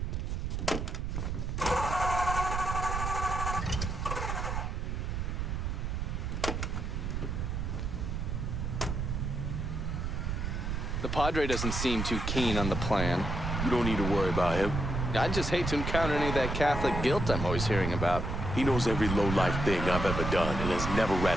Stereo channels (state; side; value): noise; right; rumble, 2 dB below the sound